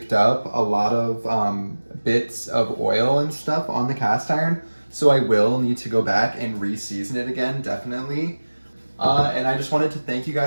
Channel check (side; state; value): both; inverted; correlation -1.00